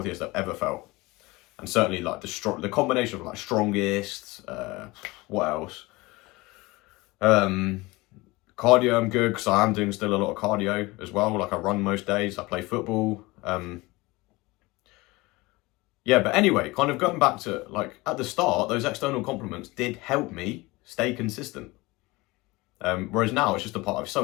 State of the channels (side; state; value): right; quieter; 22.1 dB